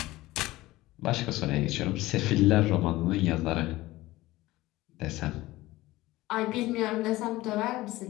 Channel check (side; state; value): right; quieter; 18.1 dB